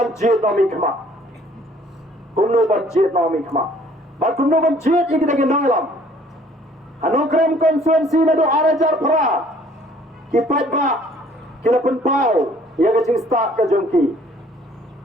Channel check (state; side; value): normal; both; correlation 0.57